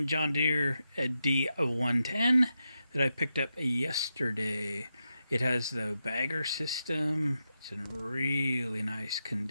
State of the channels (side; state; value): both; inverted; correlation -0.87